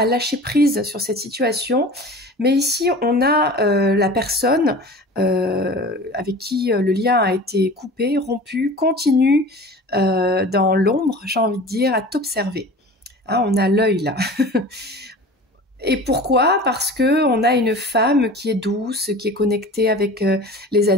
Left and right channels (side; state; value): both; normal; correlation 0.38